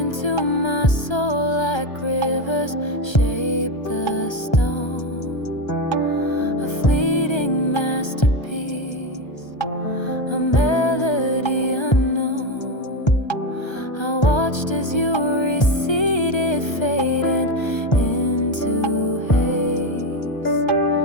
my soul like rivers shape the stone, a fleeting masterpiece, a melody unknown. I watched as you receded, fading into haze,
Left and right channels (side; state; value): right; late; 1.3 ms